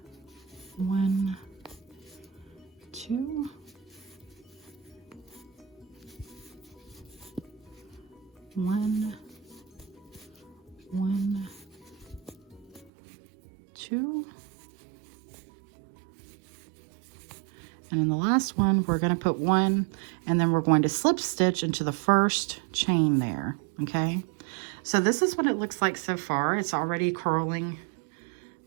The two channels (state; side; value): drops out; left; at 12.9 s